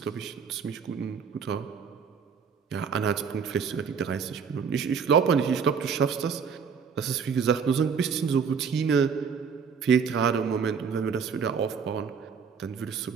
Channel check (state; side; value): quieter; left; 6.3 dB